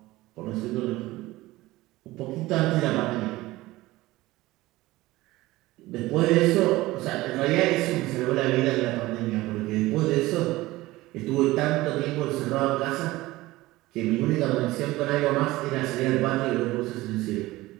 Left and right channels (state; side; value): quieter; left; 18.6 dB